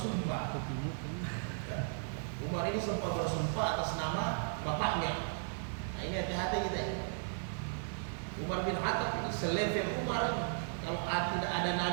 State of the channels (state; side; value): silent; left; digital silence